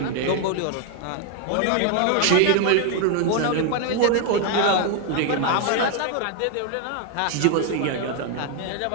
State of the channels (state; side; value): different; both; correlation 0.01